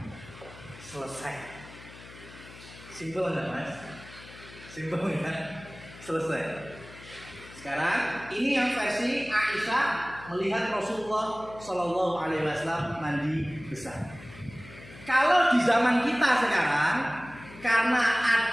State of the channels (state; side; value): noise; left; hum, 18 dB below the sound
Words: Selesai. Simpel nggak, Mas? Simpel nggak? Selesai. Sekarang ini yang versi Aisyah melihat Rasulullah Shallallahu Alaihi Wasallam mandi besar. Kalau di zaman kita sekarang, karena